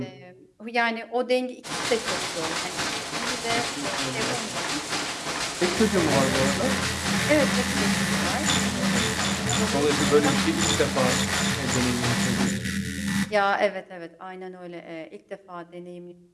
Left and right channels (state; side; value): identical; both; correlation 1.00